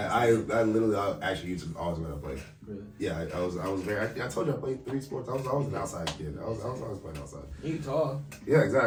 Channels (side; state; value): both; identical; correlation 1.00